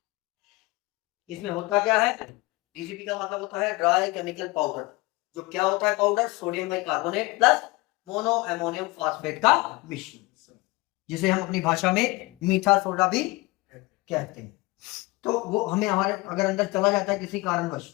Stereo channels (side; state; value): right; quieter; 23.1 dB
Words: इसमें होता क्या है? DCP का मतलब होता है ड्राई केमिकल पाउडर। जो क्या होता है powder? Sodium bicarbonate plus mono ammonium phosphate का मिश्रण, जिसे हम अपनी भाषा में मीठा सोडा भी कहते हैं। तो वो हमें हमारे अगर अंदर चला जाता है किसी कारणवश,